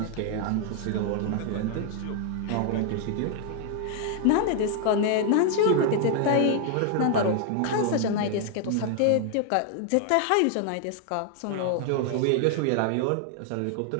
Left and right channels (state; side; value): different; both; correlation 0.00